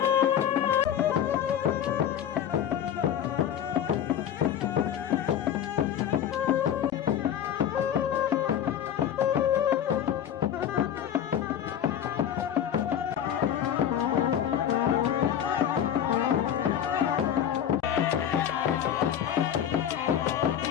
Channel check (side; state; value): right; quieter; 9.5 dB